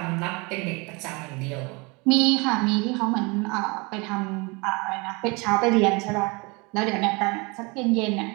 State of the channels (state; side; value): quieter; left; 28.0 dB